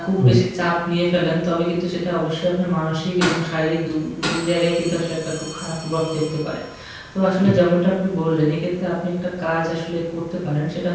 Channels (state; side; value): identical; both; correlation 1.00